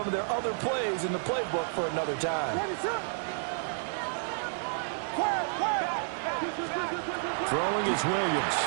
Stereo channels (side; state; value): left; silent; digital silence